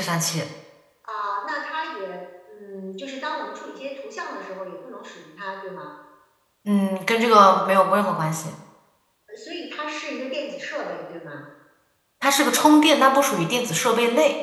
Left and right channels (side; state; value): both; identical; correlation 1.00